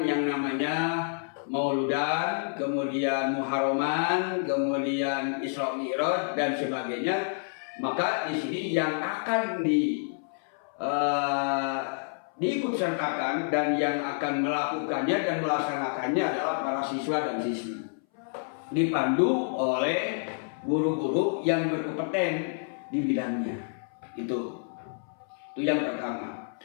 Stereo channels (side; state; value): right; silent; 59 dB below the other